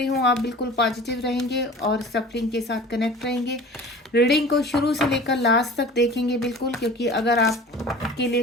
हूँ आप बिल्कुल पॉजिटिव रहेंगे और सफलिंग के साथ कनेक्ट रहेंगे। रीडिंग को शुरू से लेकर लास्ट तक देखेंगे बिल्कुल, क्योंकि अगर आपके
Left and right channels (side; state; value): both; normal; correlation 0.41